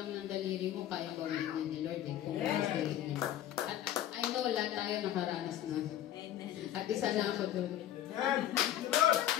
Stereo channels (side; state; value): right; quieter; 11.9 dB